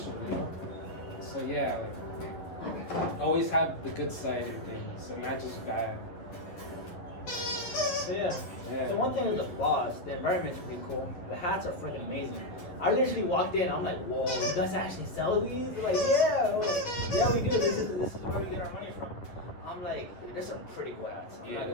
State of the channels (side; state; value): right; late; 11 ms